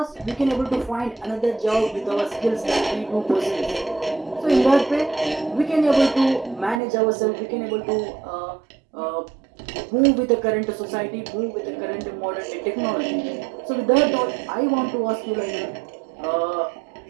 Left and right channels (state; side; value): drops out; left; at 6.8 s